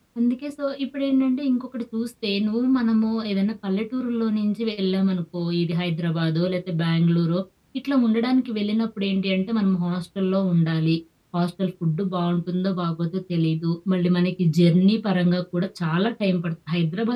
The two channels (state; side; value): identical; both; correlation 1.00